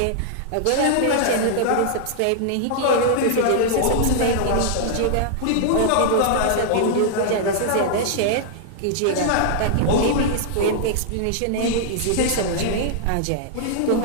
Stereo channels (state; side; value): different; both; correlation -0.01